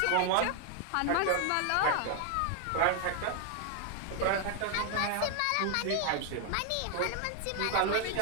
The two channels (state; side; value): different; both; correlation 0.00